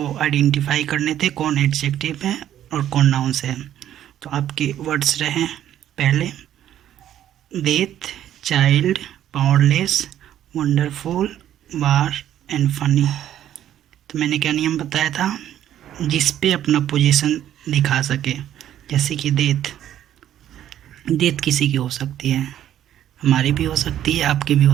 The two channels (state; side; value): quieter; left; 11.4 dB